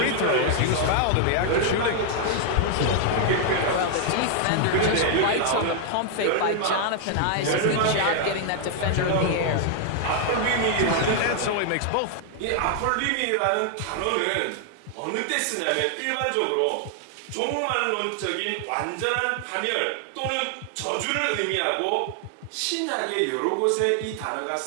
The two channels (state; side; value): different; both; correlation 0.00